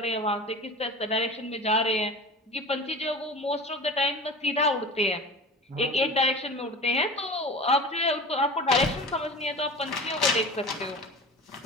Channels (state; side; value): normal; both; correlation 0.35